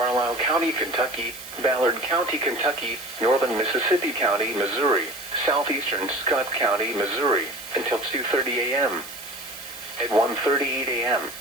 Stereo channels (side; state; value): right; noise; hiss, 14 dB below the sound